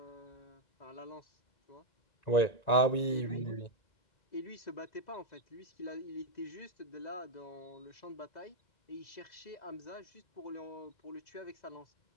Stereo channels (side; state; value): right; late; 1.9 ms